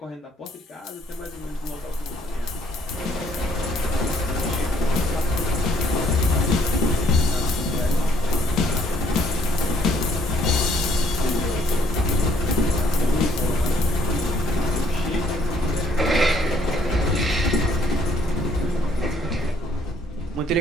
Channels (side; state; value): both; normal; correlation 0.65